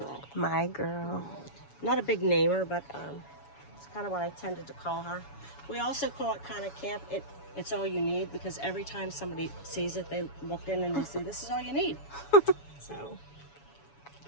My girl. Not a big namer, but it's kind of what I tended to call her. We also call it kind of camp. It's all you need, because every time somebody sees it, they look in and they say, "This is all you need." So,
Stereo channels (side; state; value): right; late; 7.1 ms